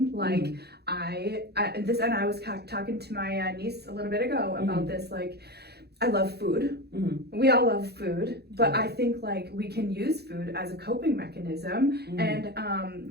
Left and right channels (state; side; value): late; left; 0.47 ms